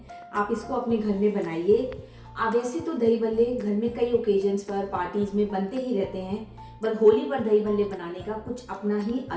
आप इसको अपने घर में बनाइए। वैसे तो दही भल्ले घर में कई ओकेजन्स पर, पार्टीज में बनते ही रहते हैं, पर होली पर दही भल्ले बनाने का कुछ अपना ही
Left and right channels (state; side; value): identical; both; correlation 1.00